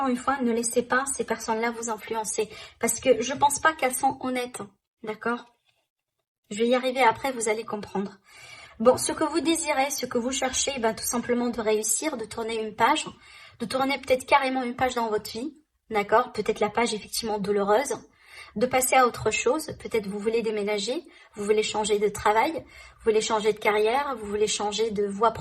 une fois, ne laissez pas ces personnes-là vous influencer, parce que je pense pas qu'elles sont honnêtes, d'accord? Je vais y arriver après, vous allez comprendre. Bon, ce que vous désirez, ce que vous cherchez, ben, tout simplement de réussir, de tourner une page, de tourner peut-être carrément une page dans votre vie, d'accord? Peut-être la page effectivement douloureuse, de passer à autre chose, peut-être vous voulez déménager, vous voulez changer de travail, vous voulez changer de carrière, vous voulez changer de voie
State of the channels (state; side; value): identical; both; correlation 1.00